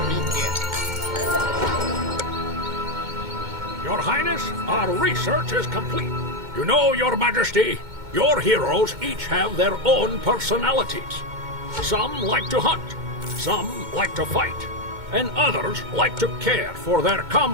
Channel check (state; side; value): late; left; 2.2 ms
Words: Your Highness, our research is complete. You know, Your Majesty, your heroes each have their own personalities. Some like to hunt, some like to fight, and others like to care for their